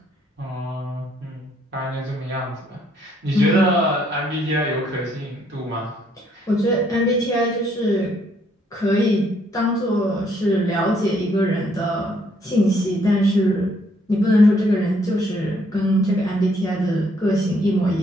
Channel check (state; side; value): normal; both; correlation 0.68